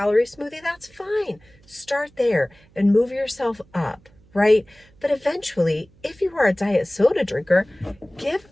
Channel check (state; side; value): noise; right; hum, 29 dB below the sound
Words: smoothie, that's fine. Start there and move yourself up, right? But eventually, if you are a diet soda drinker, give